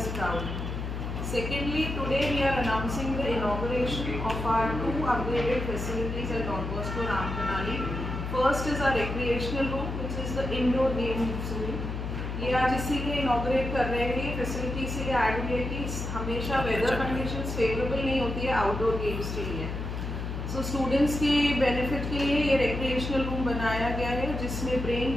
proud. Secondly, today we are announcing the inauguration of our 2 upgraded facilities at Don Bosco Ram Kanali. First is our recreational room, which is the indoor game room. ये आज इसीलिए inaugurate कर रहे हैं। ये facility इसीलिए add हुई है कि हमेशा वेदर कंडीशंस फेवरेबल नहीं होती है आउटडोर गेम्स के लिए। सो स्टूडेंट्स के बेनिफिट के लिए ये रिक्रिएशनल रूम बनाया गया है, जिसमें ब्रेन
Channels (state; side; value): noise; left; hum, 5 dB below the sound